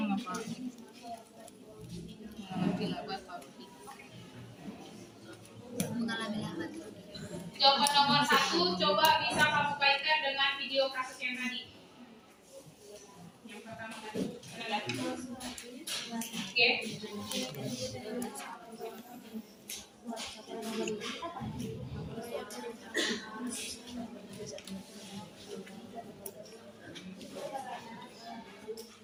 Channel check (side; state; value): both; identical; correlation 1.00